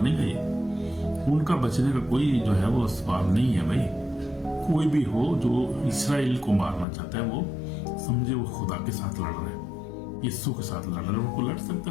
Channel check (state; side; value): drops out; right; at 6.9 s